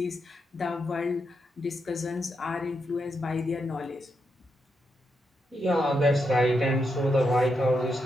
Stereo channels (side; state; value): both; normal; correlation 0.83